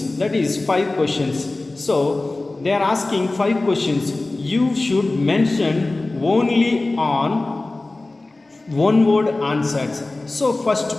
that is 5 questions. So they are asking 5 questions. You should mention only on one word answers. So first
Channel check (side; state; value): right; quieter; 3.0 dB